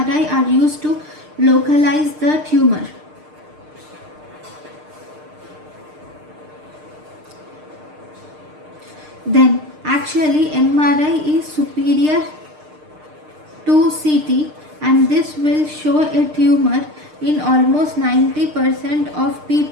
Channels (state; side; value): late; left; 6.6 ms